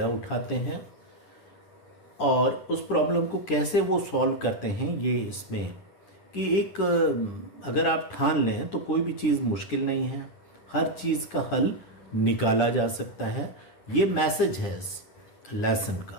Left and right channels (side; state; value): right; late; 9.9 ms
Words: उठाते हैं और उस प्रॉब्लम को कैसे वो सॉल्व करते हैं, ये इसमें कि एक अगर आप ठान लें तो कोई भी चीज़ मुश्किल नहीं है, हर चीज़ का हल निकाला जा सकता है। ये मैसेज है इस लेसन